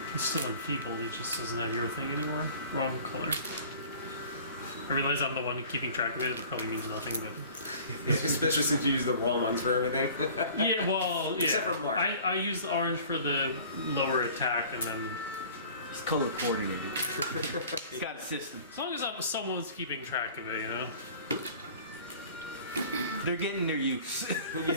He's still enfeebled. He just doesn't have your thing anymore. Wrong color. I realize I'm the one keeping track of it. It probably means nothing, but Especially since you use the wrong ones for everything. yeah. Well, yeah. Except for Mark. I use the orange for the lower attack, and then He's color coordinated. He's got a system. as long as someone's keeping track of it, you know. They're getting their use.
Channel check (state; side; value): inverted; both; correlation -0.47